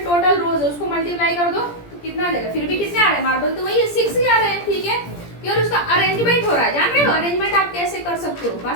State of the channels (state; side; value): late; right; 17 ms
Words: टोटल रोज है उसको मल्टीप्लाई कर दो, तो कितना आ जाएगा, फिर भी कितने आ रहे हैं मार्बल, तो वही 6 ही आ रहे हैं, ठीक है। केवल उसका अरेंजमेंट हो रहा है, जान रहे हो अरेंजमेंट आप कैसे कर सकते हो,